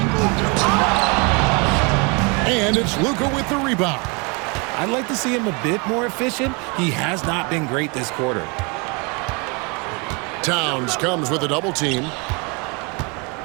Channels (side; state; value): left; quieter; 30.8 dB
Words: And it's Luka with the rebound. I'd like to see him a bit more efficient. He has not been great this quarter. Towns comes with a double team.